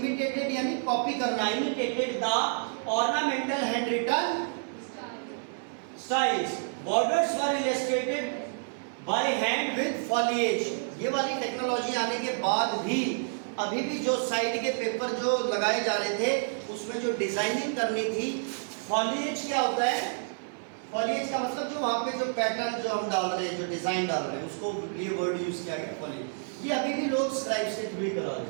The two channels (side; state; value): left; silent; 58 dB below the other